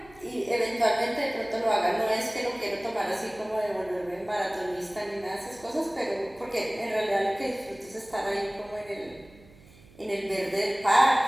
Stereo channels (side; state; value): right; noise; hum, 24 dB below the sound